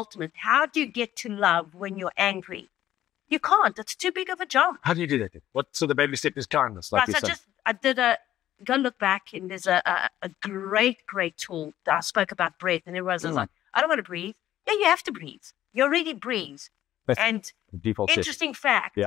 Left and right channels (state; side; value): quieter; right; 12.7 dB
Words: How do you get to love when you're angry? You can't. It's too big of a jump. How do you do that? So the baby step is kindness. Like Right, you so said. I did go look back, and there's a great tool that I spoke about breath, and everyone's like, I don't want to breathe. Yeah, you have to breathe. You already breathe. That's And default setting. interesting fact, Yeah.